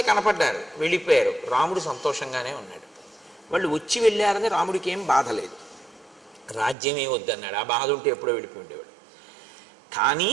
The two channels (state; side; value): drops out; left; at 6.8 s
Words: కనపడ్డారు, వెళ్ళిపోయారు, రాముడు సంతోషంగానే ఉన్నాడు. వాళ్ళు వచ్చి వెళ్ళారని రాముడికి ఏం బాధ లేదు, రాజ్యమే వద్దన్నాడు. ఆ బాధ ఉంటే ఎప్పుడో వెళ్ళిపోయి ఉండేవాడు. కానీ